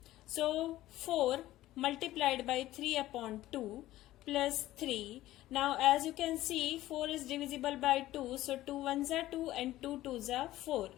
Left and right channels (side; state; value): right; quieter; 15.4 dB